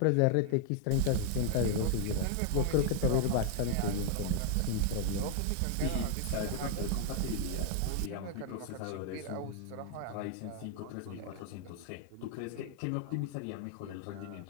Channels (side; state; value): both; different; correlation 0.00